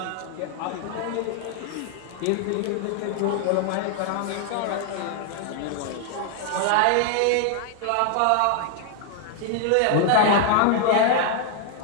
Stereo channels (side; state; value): both; different; correlation 0.00